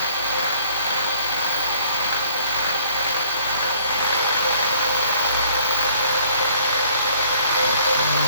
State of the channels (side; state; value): both; inverted; correlation -0.57